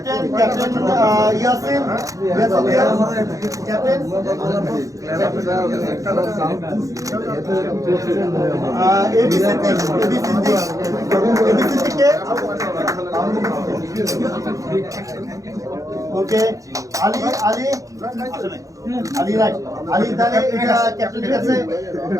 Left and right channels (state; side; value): late; left; 0.16 ms